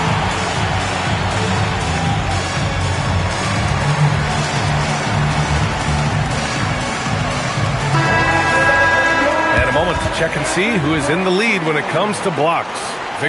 Check and see who is in the lead when it comes to blocks.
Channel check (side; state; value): both; identical; correlation 1.00